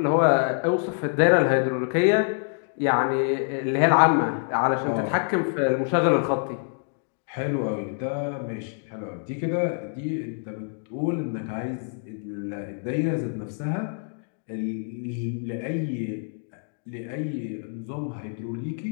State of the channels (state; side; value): silent; right; 61 dB below the other